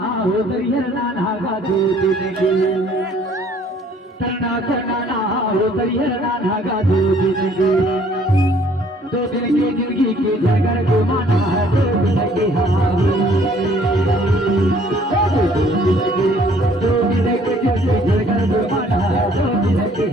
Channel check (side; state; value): both; normal; correlation 0.59